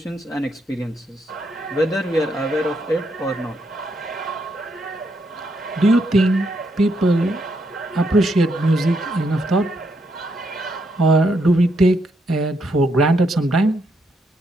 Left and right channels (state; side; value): normal; both; correlation 0.77